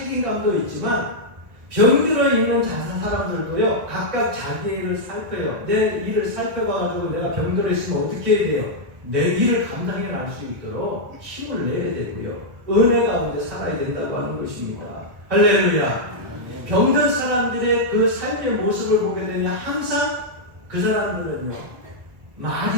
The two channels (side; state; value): left; late; 1.7 ms